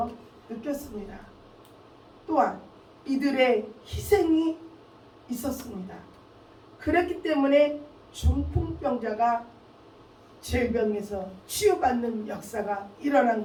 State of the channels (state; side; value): identical; both; correlation 1.00